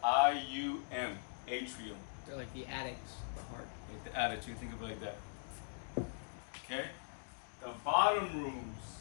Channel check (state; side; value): silent; right; digital silence